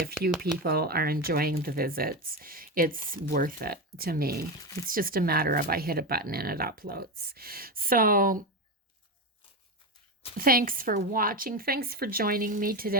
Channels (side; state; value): both; normal; correlation 0.16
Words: few people are enjoying the visits, it's worth it to me. It's just a matter of I hit a button and it uploads. So thanks for watching. Thanks for joining me